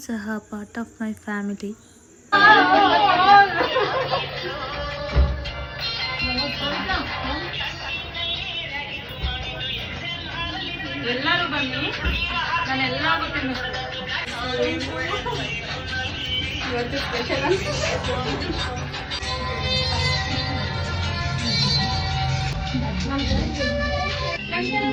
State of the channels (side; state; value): both; identical; correlation 1.00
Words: ಸಹ ಪಾರ್ಟ್ ಆಫ್ ಮೈ ಫ್ಯಾಮಿಲಿ. ಎಲ್ಲರೂ ಬನ್ನಿ, ನಾನೆಲ್ಲ ಇವತ್ತು ಸ್ಪೆಷಲ್